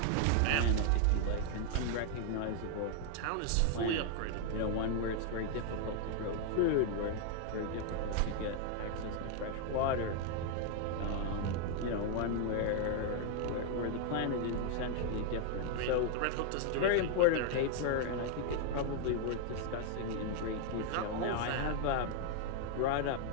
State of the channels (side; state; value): both; different; correlation 0.00